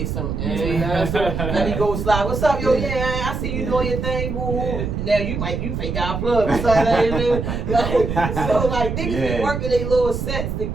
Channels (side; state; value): right; noise; rumble, 3 dB below the sound